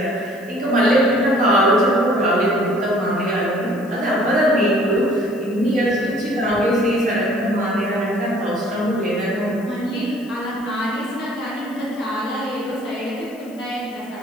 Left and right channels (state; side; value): noise; left; hiss, 26 dB below the sound